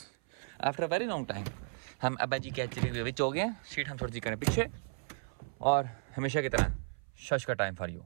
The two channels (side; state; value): left; silent; 55 dB below the other